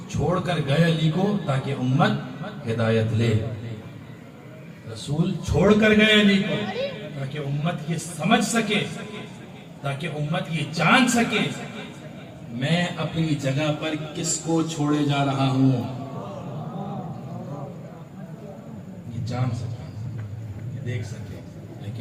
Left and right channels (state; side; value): identical; both; correlation 1.00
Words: چھوڑ کر گئے علی کو تاکہ امت ہدایت لے، رسول چھوڑ کر گئے علی کو تاکہ امت یہ سمجھ سکے، تاکہ امت یہ جان سکے میں اپنی جگہ پر کس کو چھوڑے جا رہا ہوں، یہ جان سکے، یہ دیکھ سکے۔